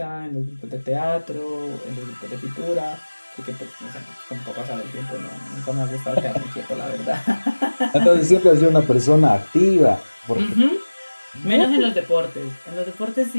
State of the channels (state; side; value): inverted; both; correlation -1.00